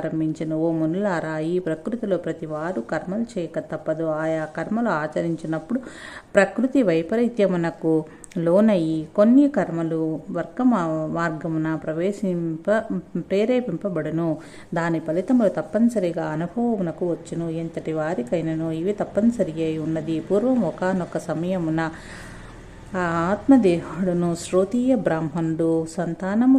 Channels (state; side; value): identical; both; correlation 1.00